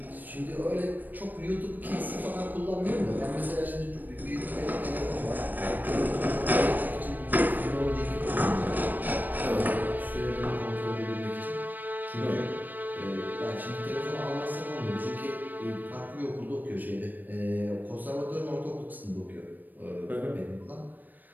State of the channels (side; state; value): left; late; 0.087 ms